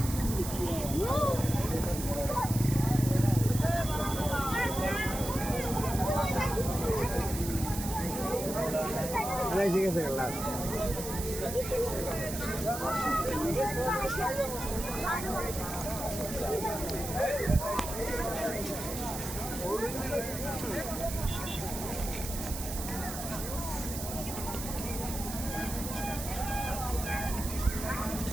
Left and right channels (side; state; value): right; noise; hiss, 8 dB below the sound